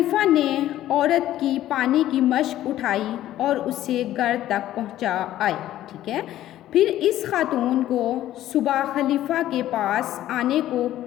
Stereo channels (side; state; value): right; quieter; 13.3 dB